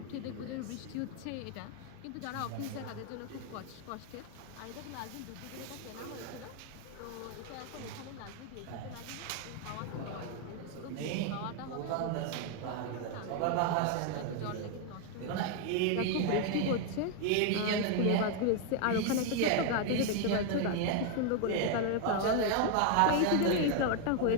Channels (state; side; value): different; both; correlation 0.01